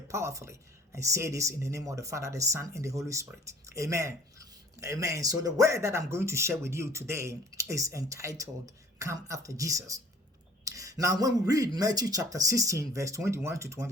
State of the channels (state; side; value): normal; both; correlation 0.52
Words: powerfully. I say this in the name of the Father, the Son, and the Holy Spirit. Amen. Amen. So the word that I'm going to share with you today is entitled, Come After Jesus. Now, when we read Matthew chapter 16, verse 21 to